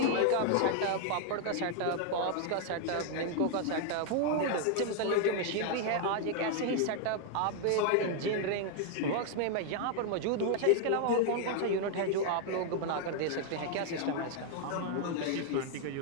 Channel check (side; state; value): both; different; correlation 0.00